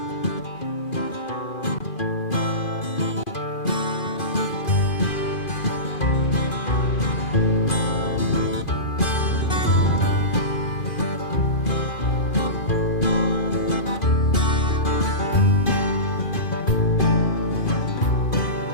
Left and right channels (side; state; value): right; late; 2.5 ms